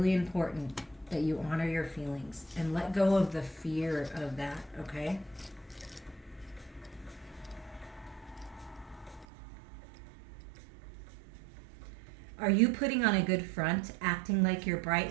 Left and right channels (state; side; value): drops out; left; at 9.2 s